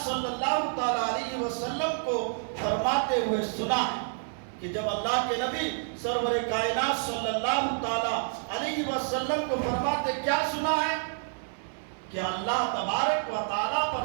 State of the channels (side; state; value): left; silent; digital silence